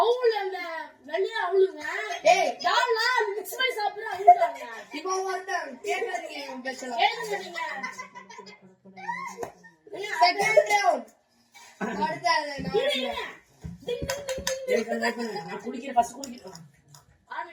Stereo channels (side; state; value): both; identical; correlation 1.00